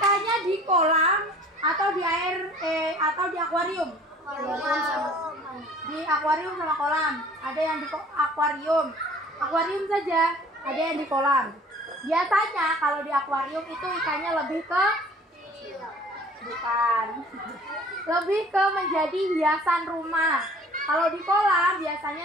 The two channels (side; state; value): both; normal; correlation 0.50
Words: di kolam atau di air atau di akuarium? Di akuarium sama kolam. Ada yang di akuarium. Akuarium saja, ada yang di kolam. Biasanya kalau di akuarium itu ikannya lebih ke lebih ke menjadi hiasan rumah. Kalau di kolam